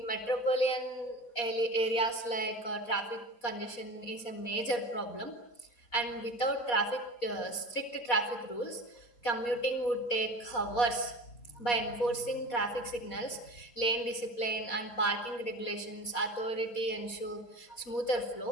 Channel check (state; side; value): late; right; 4.2 ms